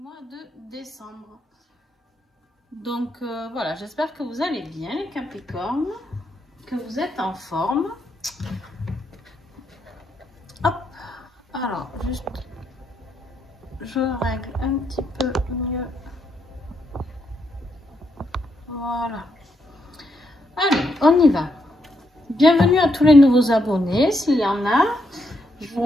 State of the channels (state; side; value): normal; both; correlation 0.79